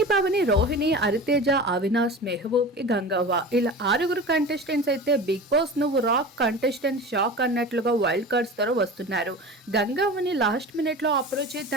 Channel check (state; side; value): normal; both; correlation 0.34